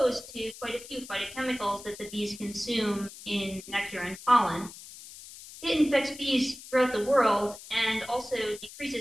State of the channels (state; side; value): noise; left; hiss, 15 dB below the sound